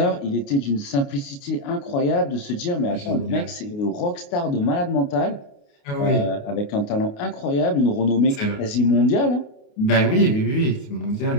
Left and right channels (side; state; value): right; late; 28 ms